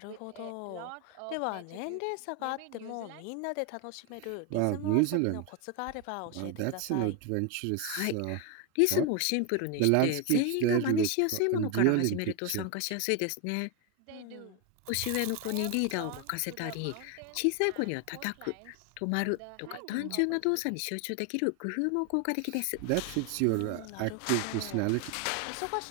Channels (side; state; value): both; different; correlation 0.01